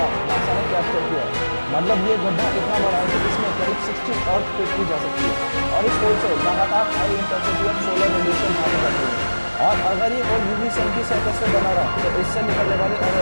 नासा ने कैप्चर किया है। मतलब ये गड्ढा इतना बड़ा है कि इसमें करीब 60 अर्थ फिट की जा सकती है और इस होल से लगातार high intensity of solar radiation भागे जाती है। और अगर ये होल यूवी सन की सरफेस पे बना रहा तो इससे निकलने वाली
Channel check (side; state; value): both; inverted; correlation -1.00